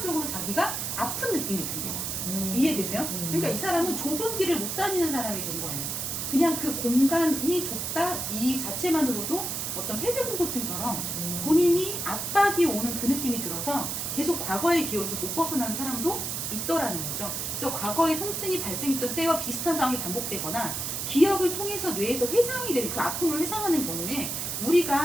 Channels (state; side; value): noise; right; hiss, 3 dB below the sound